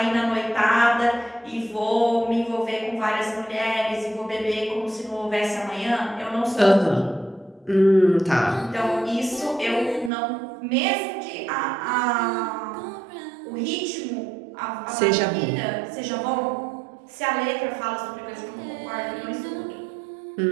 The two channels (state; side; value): drops out; left; at 10.1 s